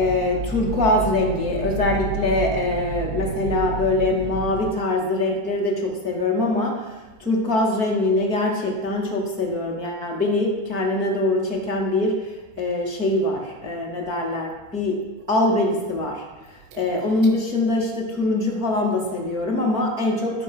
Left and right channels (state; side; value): late; left; 4.5 ms